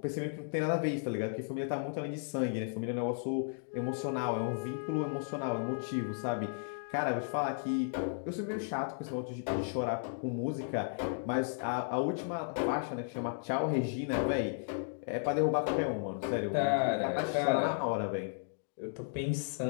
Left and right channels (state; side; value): silent; right; digital silence